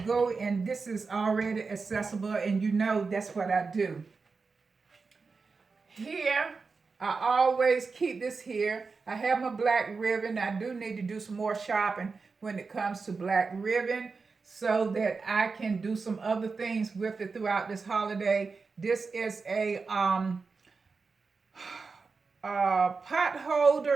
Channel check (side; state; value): left; quieter; 4.5 dB